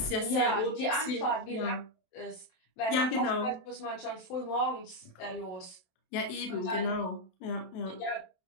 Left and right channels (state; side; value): late; right; 27 ms